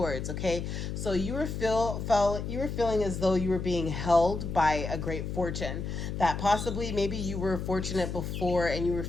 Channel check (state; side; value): noise; left; hum, 4 dB below the sound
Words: Okay, so you were feeling as though you were being held by a great fortune. That possibly maybe you were fortunate before, and you were